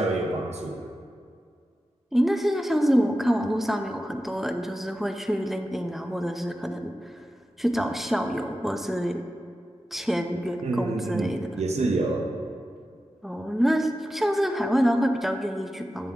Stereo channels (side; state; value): both; normal; correlation 0.92